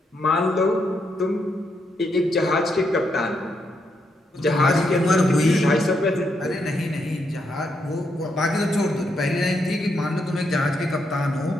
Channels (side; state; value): both; normal; correlation 0.79